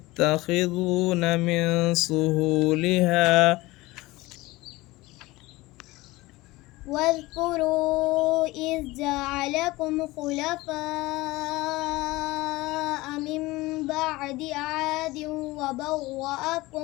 من سهولها واذكروا إذ جعلكم خلفاء من بعد عاد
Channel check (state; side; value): quieter; right; 20.2 dB